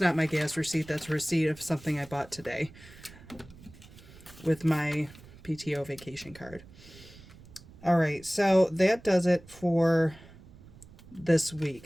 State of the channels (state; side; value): noise; right; rumble, 21 dB below the sound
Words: my gas receipt. That's a receipt of something I bought today with my PTO vacation card. All right, so that does it for this